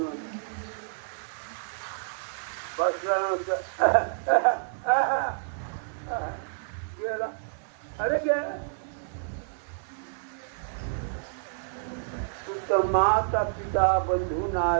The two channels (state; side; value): silent; left; 59 dB below the other